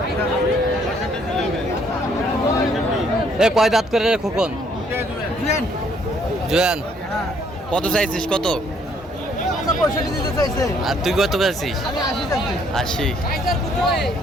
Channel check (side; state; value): both; normal; correlation 0.65